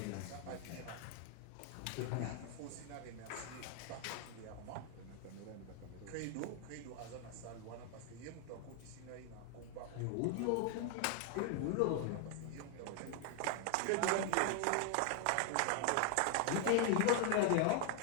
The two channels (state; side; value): different; both; correlation 0.00